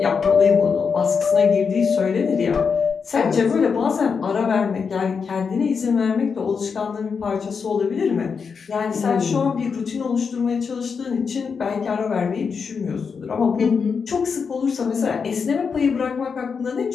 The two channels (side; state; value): right; quieter; 5.8 dB